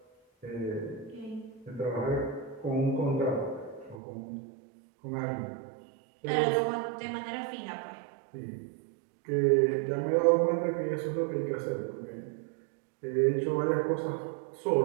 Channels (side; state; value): left; drops out; at 4.0 s